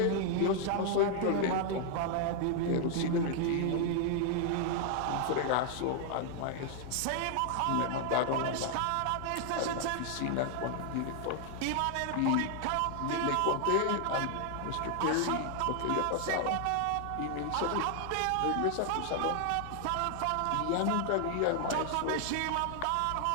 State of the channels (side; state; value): both; different; correlation 0.00